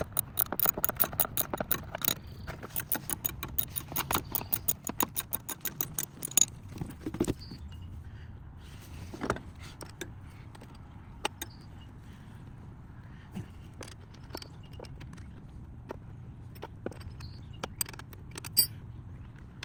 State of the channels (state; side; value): identical; both; correlation 1.00